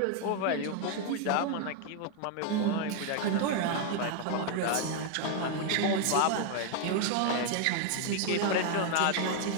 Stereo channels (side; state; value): both; different; correlation 0.00